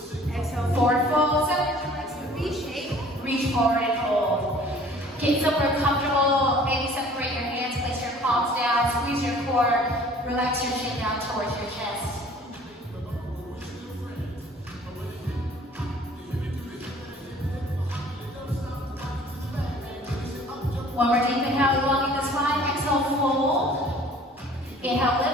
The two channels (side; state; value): both; normal; correlation 0.51